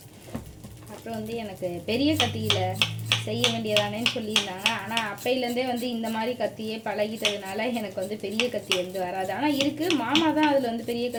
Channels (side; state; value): both; identical; correlation 1.00